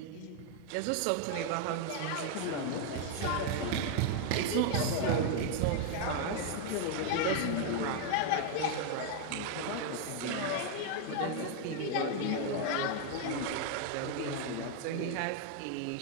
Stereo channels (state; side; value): different; both; correlation 0.00